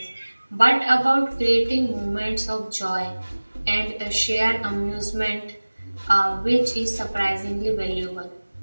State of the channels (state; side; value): inverted; both; correlation -1.00